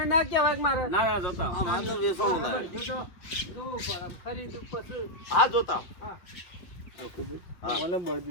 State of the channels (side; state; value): right; late; 5.4 ms